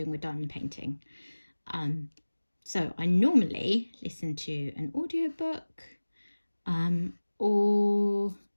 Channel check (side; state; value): both; inverted; correlation -1.00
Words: with diamond painting. So I normally listen to an audiobook, or